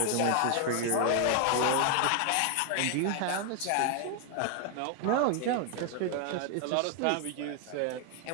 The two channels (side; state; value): both; different; correlation 0.00